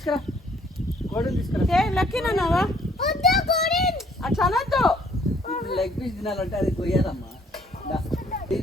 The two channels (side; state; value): both; normal; correlation 0.62